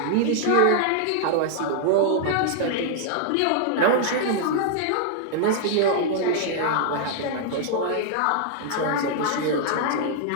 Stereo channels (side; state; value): both; different; correlation -0.01